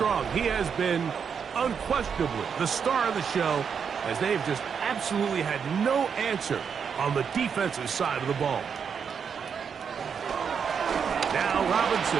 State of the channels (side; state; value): left; quieter; 6.8 dB